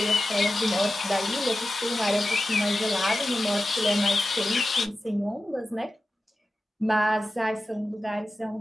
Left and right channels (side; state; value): both; normal; correlation 0.93